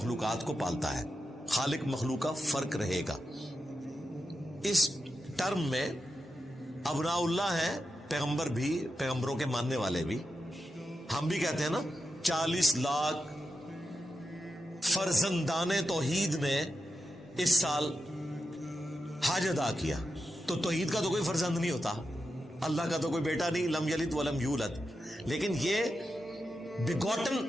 کو پالتا ہے. خالق مخلوق کا فرق رہے گا. اس ٹرم میں ابناء اللہ ہیں پیغمبر بھی، پیغمبروں کے ماننے والے بھی. ہم بھی کہتے ہیں نا 40 لاکھ فرزندان توحید نے اس سال حج ادا کیا. تو توحید کا تو کوئی فرزند نہیں ہوتا، اللہ کا تو کوئی بیٹا نہیں، لم یلد ولم یولد. لیکن یہ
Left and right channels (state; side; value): normal; both; correlation 0.89